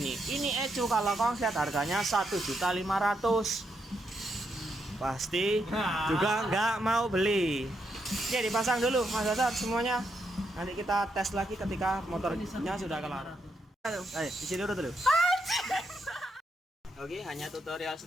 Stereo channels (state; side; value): normal; both; correlation 0.80